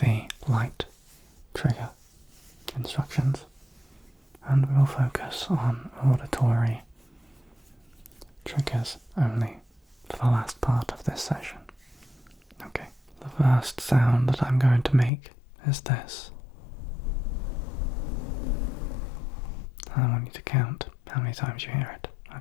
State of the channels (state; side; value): drops out; right; at 15.1 s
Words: light trigger instructions, and we will focus on auditory triggers only for the last part of this session. Okay, the first sound that I'm going to make is this. I want you to count how many times you hear it,